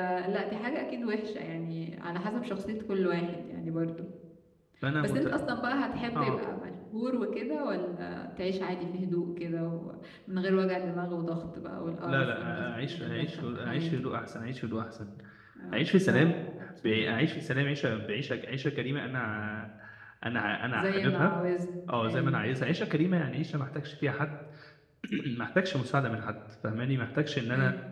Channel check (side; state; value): both; identical; correlation 1.00